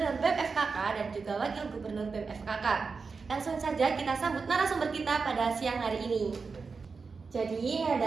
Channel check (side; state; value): left; quieter; 4.8 dB